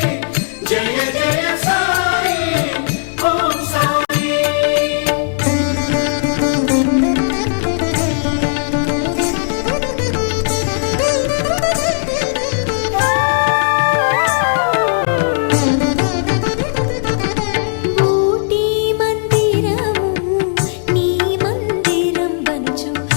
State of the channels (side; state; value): right; silent; digital silence